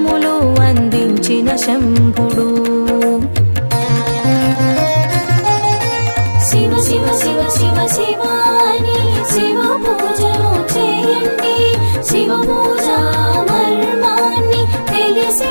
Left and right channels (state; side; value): inverted; both; correlation -1.00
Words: అందించిన శంభుడు. శివ శివ శివ శివ శివ అని శివ పూజను చేయండి. శివ పూజ మర్మాన్ని తెలిసి